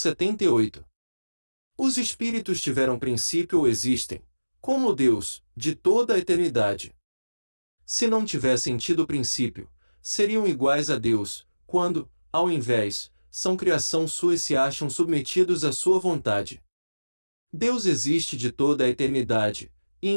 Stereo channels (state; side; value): inverted; both; correlation -1.00